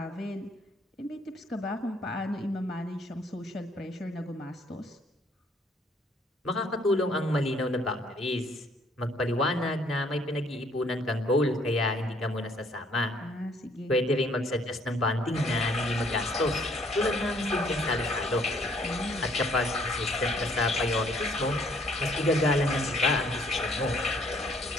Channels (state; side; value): normal; both; correlation 0.63